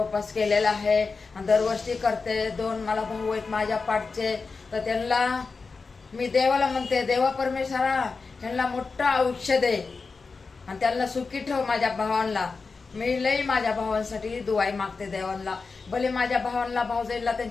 केलेला आहे, दरवर्षी करते. 2 मला भाऊ आहेत माझ्या पाठचे, तर त्यांना मी देवाला म्हणते, देवा परमेश्वरा त्यांना मोठं आयुष्य दे आणि त्यांना सुखी ठेव. माझ्या भावांना मी लई माझ्या भावांसाठी दुआई मागते देवांना. भले माझ्या भावांना, भाऊजाईला,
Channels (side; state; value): right; quieter; 4.5 dB